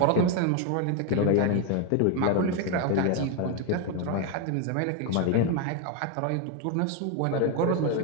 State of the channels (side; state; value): both; different; correlation 0.01